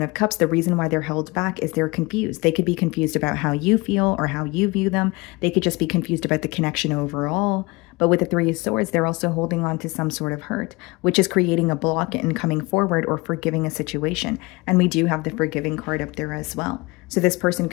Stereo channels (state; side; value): quieter; right; 24.4 dB